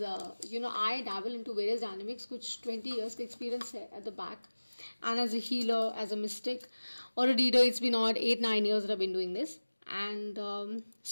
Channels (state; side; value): inverted; both; correlation -1.00